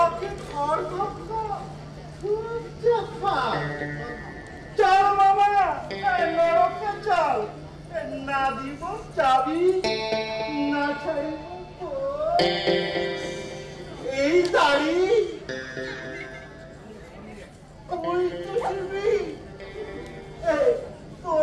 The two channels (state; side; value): identical; both; correlation 1.00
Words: ঘর ধাক্কা? চল মামা, নরকে চল, না দিব চাবি, না ছাড়িব এই দাড়ি। ওই চুষিবি,